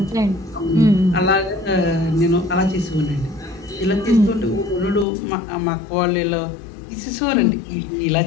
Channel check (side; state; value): right; drops out; at 5.1 s